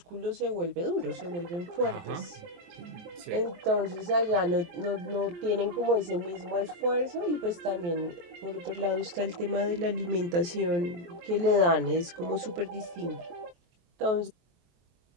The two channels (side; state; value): left; late; 23 ms